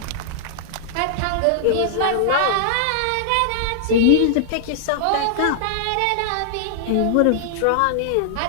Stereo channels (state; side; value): different; both; correlation -0.01